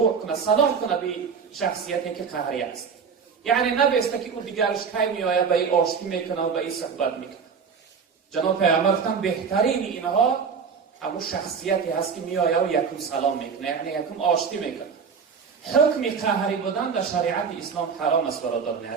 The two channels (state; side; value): quieter; left; 6.1 dB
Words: کنه، سلام کنه به شخصیتی که قهری است. یعنی نبسته که اون دیگرش کی میآید به این آشتی میکنه و به این صحبت میکنه. جناب پیغمبر گفتن بهترین اینها همون شخصیتی هست که میآید و یکم سلام میکنه، یعنی یکم آشتی میکنه. حکم قهری بودن در شریعت اسلام حرام است برادران